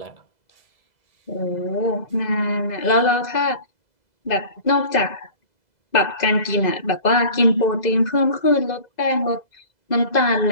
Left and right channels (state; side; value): late; right; 2.0 ms